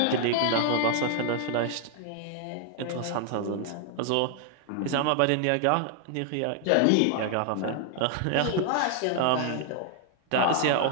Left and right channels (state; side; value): different; both; correlation 0.00